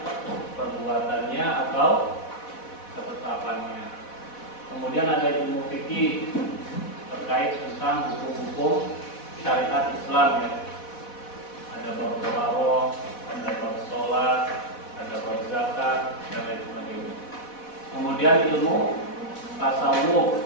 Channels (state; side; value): late; right; 4.1 ms